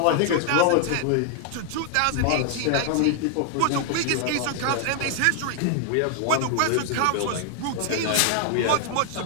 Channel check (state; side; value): different; both; correlation 0.00